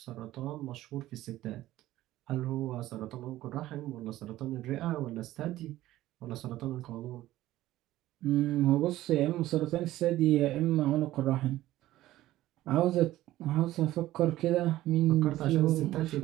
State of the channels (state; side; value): quieter; left; 15.3 dB